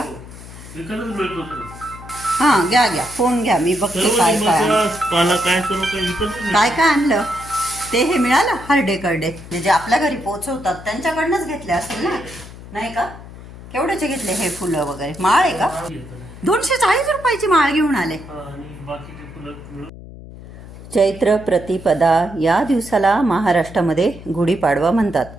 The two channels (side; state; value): left; noise; hum, 16 dB below the sound